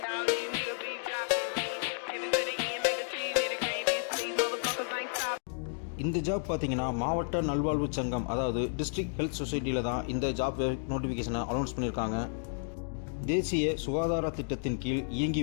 இந்த ஜாப் பார்த்தீங்கன்னா மாவட்ட நல்வாழ்வு சங்கம், அதாவது டிஸ்ட்ரிக்ட் ஹெல்த் சொசைட்டியில் தான் இந்த ஜாப் நோட்டிஃபிகேஷனை அனௌன்ஸ் பண்ணியிருக்காங்க. தேசிய சுகாதார திட்டத்தின் கீழ்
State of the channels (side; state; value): right; silent; digital silence